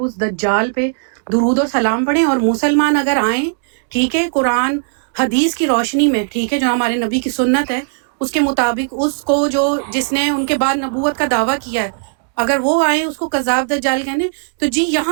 اس دجال پہ درود و سلام پڑھیں. اور مسلمان اگر آئیں, ٹھیک ہے, قرآن حدیث کی روشنی میں, ٹھیک ہے, جو ہمارے نبی کی سنت ہے اس کے مطابق, اس کو جس نے ان کے بعد نبوت کا دعویٰ کیا ہے, اگر وہ آئیں اس کو قذاب دجال کہنے, تو جی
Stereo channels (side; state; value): left; silent; digital silence